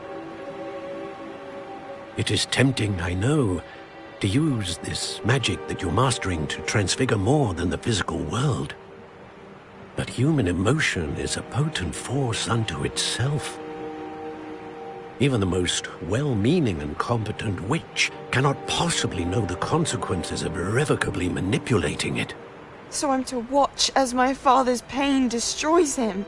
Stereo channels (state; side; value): identical; both; correlation 1.00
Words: It is tempting, I know, to use this magic that you're mastering to transfigure more than the physical world. But human emotion is a potent force unto itself. Even the most well-meaning and competent witch cannot possibly know the consequences of irrevocably manipulating it. So I'm to watch as my father's pain destroys him.